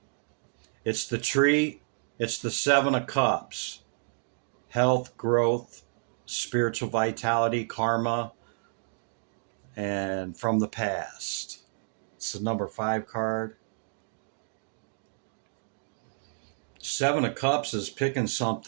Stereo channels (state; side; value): silent; left; digital silence